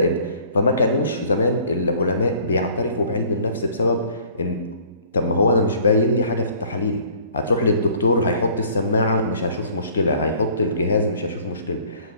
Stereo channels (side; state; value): both; inverted; correlation -0.53